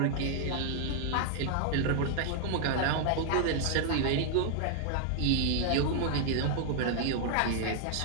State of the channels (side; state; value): both; different; correlation 0.00